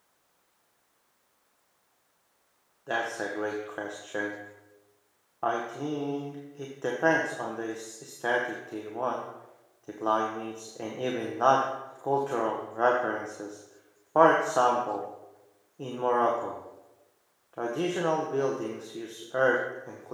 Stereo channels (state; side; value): identical; both; correlation 1.00